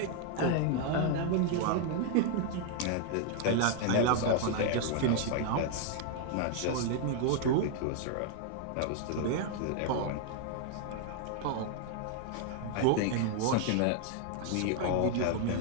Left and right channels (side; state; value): both; different; correlation 0.00